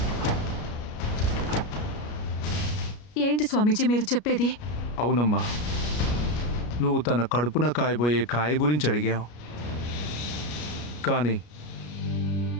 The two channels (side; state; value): right; late; 33 ms